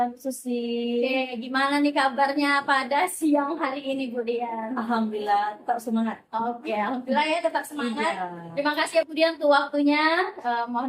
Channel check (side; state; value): both; identical; correlation 1.00